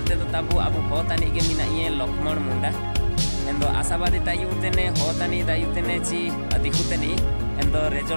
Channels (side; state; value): both; inverted; correlation -1.00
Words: तो ताबु अबु होतानी के मिना ये लक्ष्मण मुंडा एंदो आशावादी तायुतेने होतानी दायुतेने ची दिखुतेनी एंदो